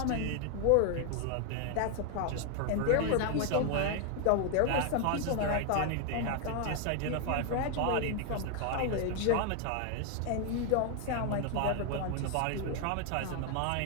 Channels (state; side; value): different; both; correlation 0.00